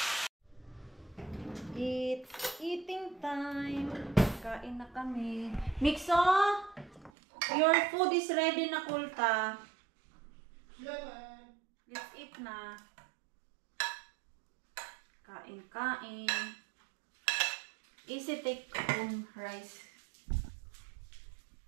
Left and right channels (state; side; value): drops out; left; at 7.1 s